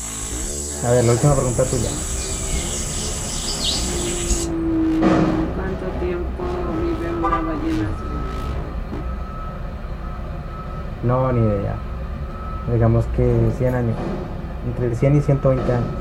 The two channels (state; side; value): identical; both; correlation 1.00